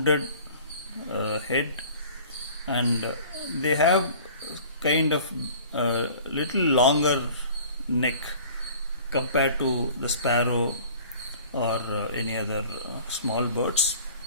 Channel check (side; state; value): both; inverted; correlation -0.47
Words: head and they have kind of a little longer neck compared to the sparrow or any other small birds,